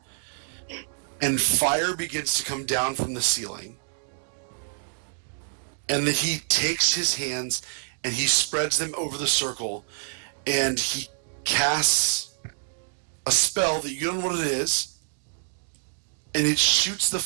and fire begins to come down from the ceiling. And then he takes his hands and he spreads them over the circle, and he casts a spell that you don't know what it is, and it shoots the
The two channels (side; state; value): left; silent; digital silence